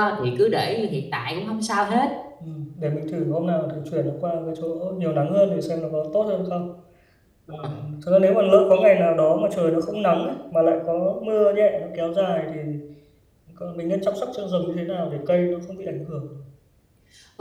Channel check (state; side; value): identical; both; correlation 1.00